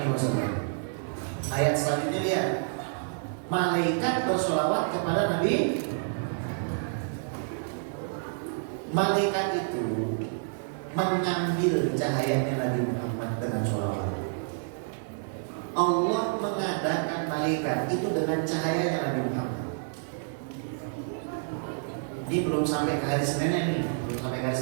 Ayat selanjutnya lihat, malaikat bersolawat kepada Nabi. Malaikat itu mengambil cahayanya Nabi Muhammad dengan sholawat. Allah mengadakan malaikat itu dengan cahayanya Nabi Muhammad. Ini belum sampai ke hari Seninnya nih, belum sampai ke hari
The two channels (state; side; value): silent; left; digital silence